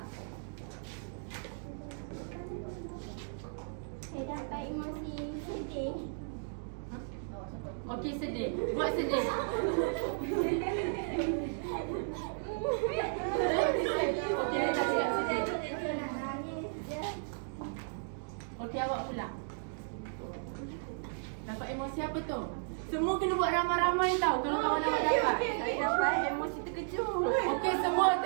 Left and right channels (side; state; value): left; silent; digital silence